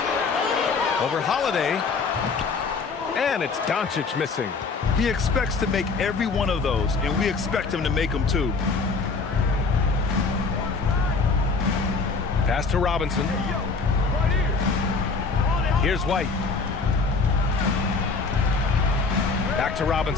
Over Holiday. And it's Doncic missing. He expects to make every one of those, and we expect him to make them too. Pass to Robinson. Here's White. Back to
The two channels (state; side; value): quieter; right; 4.4 dB